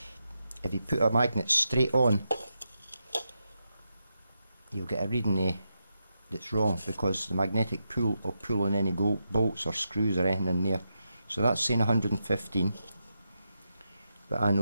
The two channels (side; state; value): both; inverted; correlation -0.86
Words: If you put a magnet straight on, you'll get a reading that's wrong, because the magnetic pull will pull on any bolts or screws or anything in there. So that's saying 115, but I